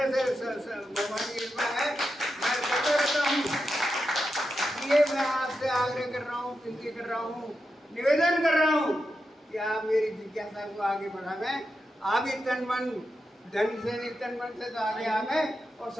से भगवान की कृपा है, मैं करता रहता हूँ। इसलिए मैं आपसे आग्रह कर रहा हूँ, विनती कर रहा हूँ, निवेदन कर रहा हूँ कि आप मेरी जिज्ञासा को आगे बढ़ावें। आप ही तन मन धन से नहीं, तन मन से तो आगे आवें और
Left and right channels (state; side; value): normal; both; correlation 0.88